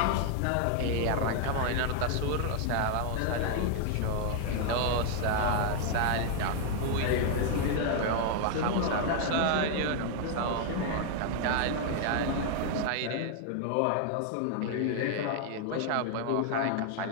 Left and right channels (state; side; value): different; both; correlation 0.00